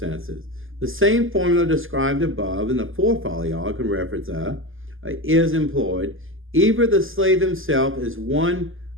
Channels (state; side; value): late; left; 0.59 ms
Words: The same formula described above in the 4th Aliyah, I can reference that, is employed. Either the slave himself is one